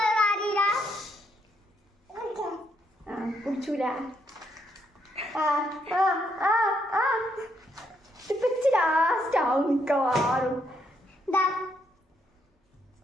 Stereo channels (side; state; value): both; normal; correlation 0.75